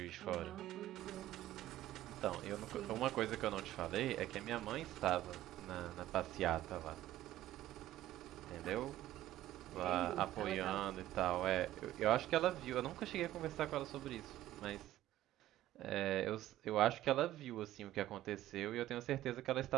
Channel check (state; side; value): quieter; left; 14.1 dB